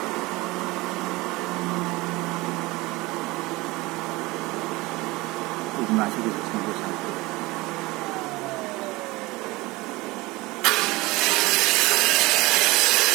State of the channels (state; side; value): quieter; left; 21.6 dB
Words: Masih di 161.